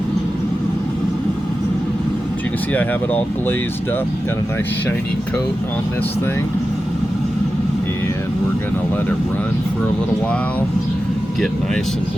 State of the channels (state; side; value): normal; both; correlation 0.92